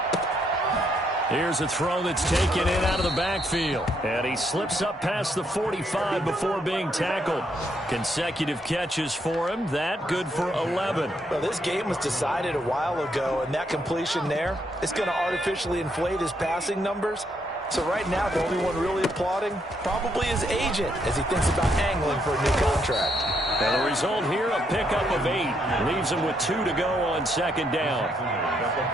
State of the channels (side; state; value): both; normal; correlation 0.75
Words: Here's a throw that's taken in out of the backfield. And he slips up past the 45 before being tackled. Consecutive catches for him. That good for 11. Well, this game was decided a while ago, and that completion there is going to artificially inflate his passing numbers. So right now, the only one really applauding probably his agent as he thinks about angling for a new contract. And the result here, a pickup of 8. Leaves him with 2 to go on second down. At the